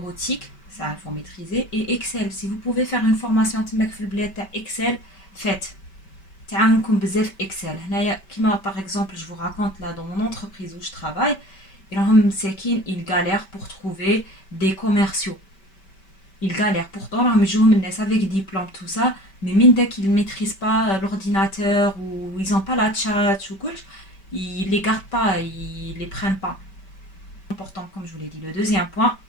ça il faut maîtriser. Et Excel, si vous pouvez faire une formation تماك في البلاد تاع Excel, faites. تعاونكم بزاف Excel. هنايا كيما par exemple, je vous raconte là dans mon entreprise où je travaille, ils galèrent pour trouver des commerciaux. Ils galèrent. Pourtant, راهم يجوهم الناس avec diplôme tout ça, mais من داك ils maîtrisent pas l'ordinateur ou ils ont pas la chat ou كلش, ils les gardent pas, ils les prennent pas. Important, comme je vous l'ai dit. Le deuxième point,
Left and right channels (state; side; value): late; right; 5.2 ms